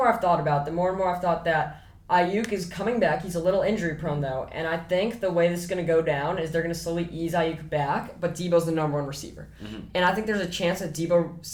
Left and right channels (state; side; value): identical; both; correlation 1.00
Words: I've thought about it, the more and more I've thought that Ayuk is coming back. He's a little injury prone, though. And I think the way this is going to go down is they're going to slowly ease Ayuk back, but Deebo's the number 1 receiver. And I think there's a chance that Deebo